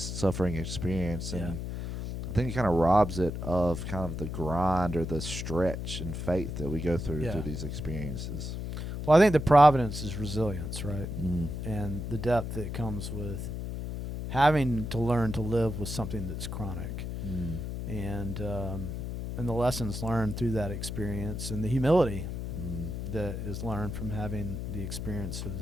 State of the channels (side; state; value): left; noise; hum, 5 dB below the sound